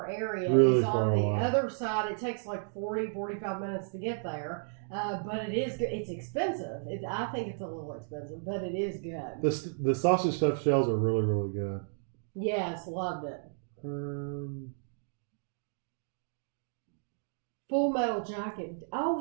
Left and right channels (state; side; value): silent; left; digital silence